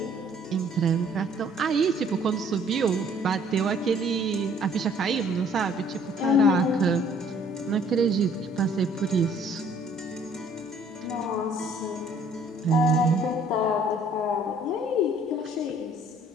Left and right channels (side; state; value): both; normal; correlation 0.59